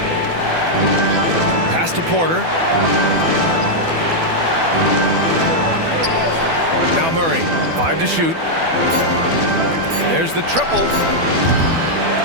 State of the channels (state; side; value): late; left; 12 ms